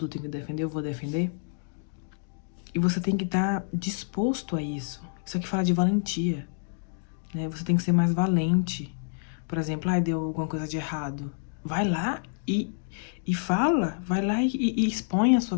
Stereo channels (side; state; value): right; silent; digital silence